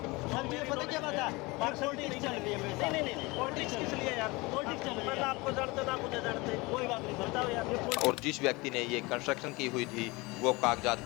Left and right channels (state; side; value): quieter; right; 23.9 dB